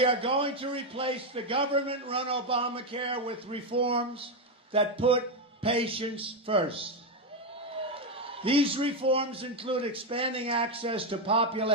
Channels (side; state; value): both; normal; correlation 0.06